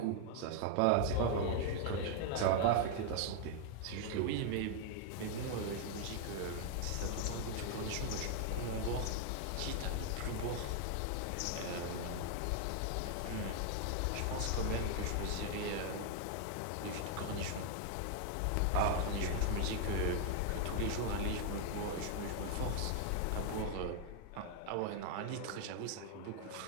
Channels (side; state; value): both; different; correlation 0.00